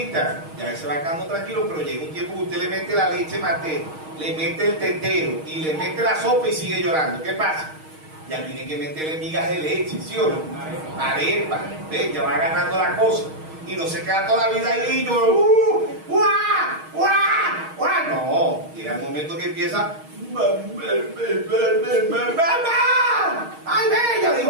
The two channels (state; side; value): late; left; 6.4 ms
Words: Ya se va quedando tranquilo, pero llega un tiempo que usted le mete la leche materna, le mete el tetero y le mete la sopa y sigue llorando. ¿Qué pasa? Ya tiene que meterle migas de leche, ¿sí o no? Arepa. ¿Ves? Ya va agarrando la cosa. Y no se queda toda la vida ahí y llora. No, llega el momento que empieza. ¡Mamá! ¡Ay, bella!